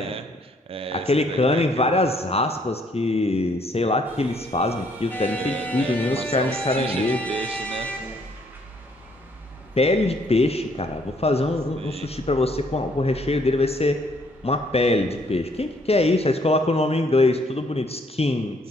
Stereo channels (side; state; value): both; normal; correlation 0.66